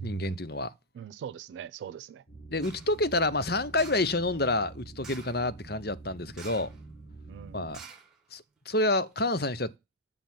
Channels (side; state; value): both; normal; correlation -0.08